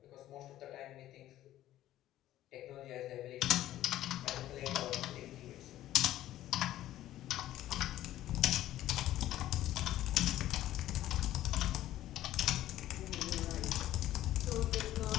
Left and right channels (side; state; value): right; quieter; 13.7 dB